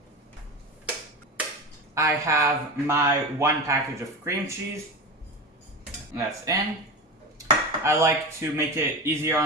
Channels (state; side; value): normal; both; correlation 0.25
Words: I have my 1 package of cream cheese. That's in. I like to make it easier